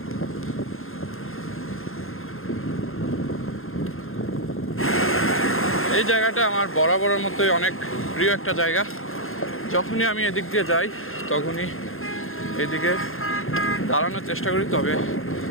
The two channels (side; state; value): right; late; 0.61 ms